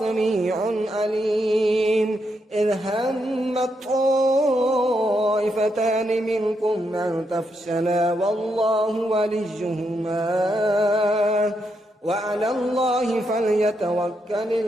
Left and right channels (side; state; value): both; normal; correlation 0.81